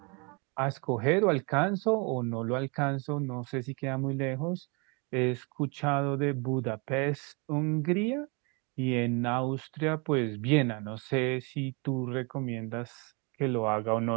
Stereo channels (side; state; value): left; quieter; 31.5 dB